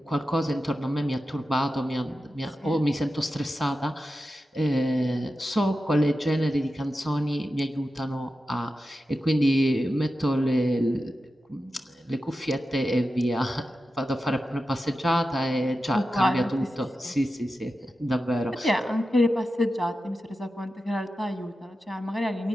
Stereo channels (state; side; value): normal; both; correlation 0.92